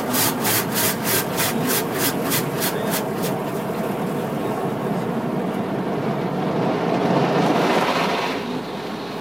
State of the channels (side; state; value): left; noise; hum, 26 dB below the sound